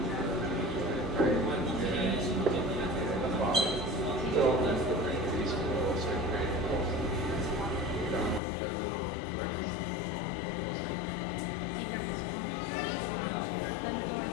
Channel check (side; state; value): right; drops out; at 8.4 s